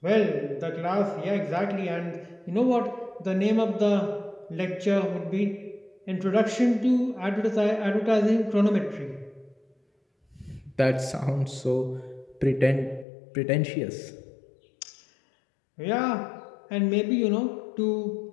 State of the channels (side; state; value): right; drops out; at 13.1 s